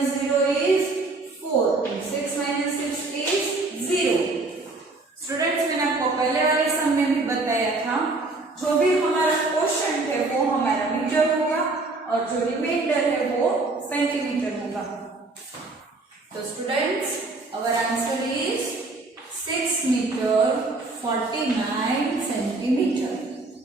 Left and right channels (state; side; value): quieter; left; 3.3 dB